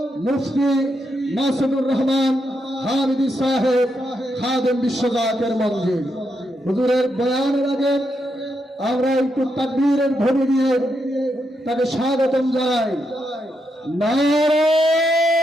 মুফতি মাসুদুর রহমান হামিদি সাহেব খাদেম বিশ্বজাকের মঞ্জিল। হুজুরের বয়ানের আগে আমরা একটু তাকবীরের ধ্বনি দিয়ে তাকে স্বাগতম জানাই। নারে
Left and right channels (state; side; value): normal; both; correlation 0.82